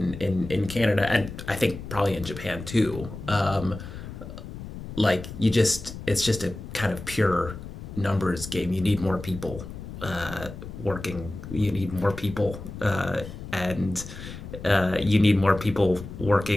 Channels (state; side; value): noise; left; rumble, 11 dB below the sound